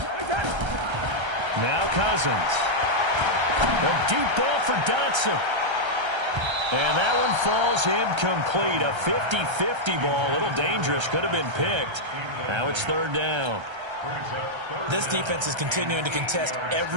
Now Cousins. A deep ball for Dotson. And that one falls incomplete. A 50-50 ball. A little dangerous. Could have been picked. Now it's 3rd down. This defense is continuing to contest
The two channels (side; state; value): left; late; 1.3 ms